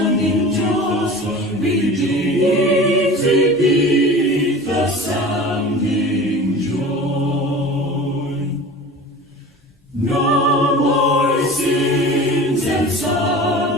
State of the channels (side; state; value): both; normal; correlation 0.37